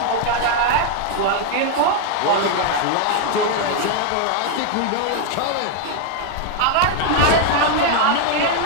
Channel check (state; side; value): different; both; correlation 0.00